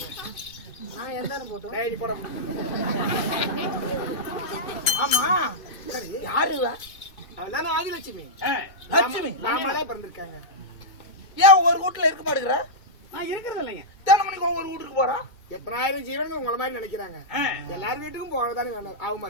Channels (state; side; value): late; right; 2.2 ms